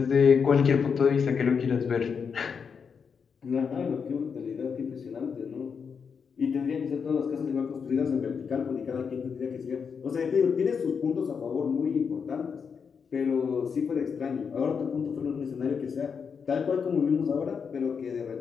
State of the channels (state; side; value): quieter; right; 6.2 dB